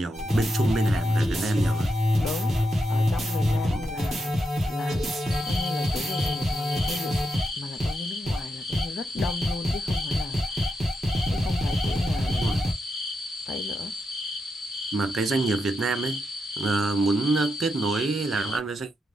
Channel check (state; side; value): normal; both; correlation 0.84